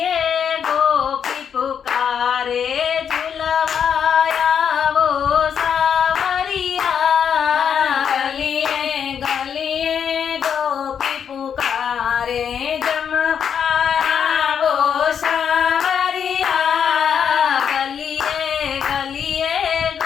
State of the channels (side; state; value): right; quieter; 7.7 dB